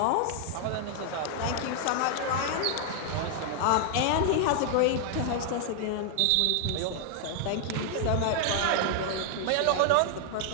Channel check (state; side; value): different; both; correlation 0.00